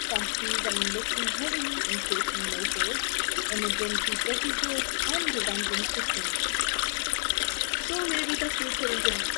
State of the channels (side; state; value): right; silent; 59 dB below the other